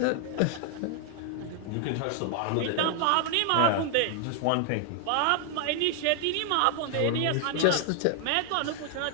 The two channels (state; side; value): different; both; correlation 0.00